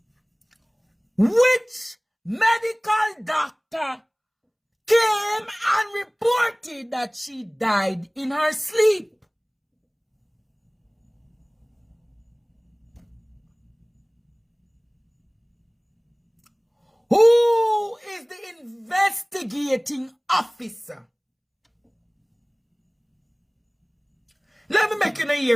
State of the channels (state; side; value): identical; both; correlation 1.00